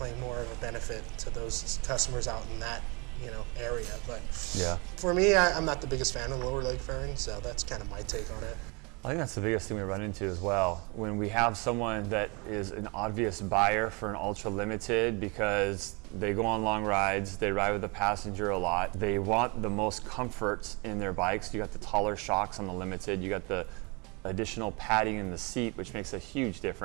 more of a benefit to those customers out in that area. But yeah, for me, I'm not the biggest fan of the lower leg fairing, so that's kind of my take on it. I think that's the biggest thing we run into as well. When we have someone that is an obvious buyer for an Ultra Limited because they go on long rides, they ride with a passenger a lot, they want the most comfort in their bikes. You got the taller shocks on the Limited, you got the additional padding in the seat, which makes a huge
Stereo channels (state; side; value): quieter; left; 29.5 dB